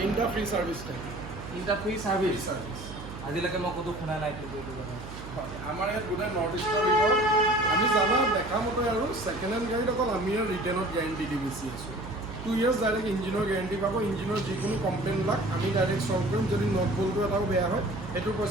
ফ্ৰী ছাৰ্ভিচ থাকে। 3টা ফ্ৰী ছাৰ্ভিচ। আজিলৈকে মই ক'তো শুনা নাই কিন্তু এইটো কথা। আমাৰ ইয়াত গোটেই নৰ্থ ইষ্টৰ ভিতৰত আমি জানা দেখা মতে আৰু ছেকেণ্ড হেণ্ড গাড়ীত অকল আমি ৰিটেইনত গেৰেণ্টি দি বেছি আছোঁ। 2 years ডাইৰেক্ট ইঞ্জিনৰ গেৰেণ্টি পাব। ইঞ্জিনৰ যিকোনো কমপ্লেইনবিলাক আমি ডাইৰেক্ট চল্ভ কৰিম। যদি নট বল্টটো এটাও বেয়া হয় সেইটোৰ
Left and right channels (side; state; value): right; noise; hum, 12 dB below the sound